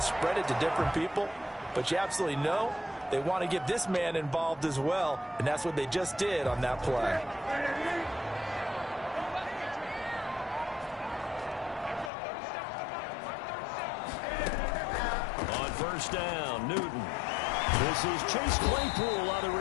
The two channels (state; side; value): drops out; right; at 12.1 s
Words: spread it to different people, but you absolutely know they want to get this man involved as well, and that's what they just did on that play. On first down, Newton. This is Chase Claypool on the